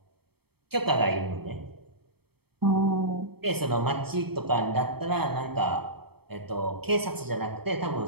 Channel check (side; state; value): left; late; 0.96 ms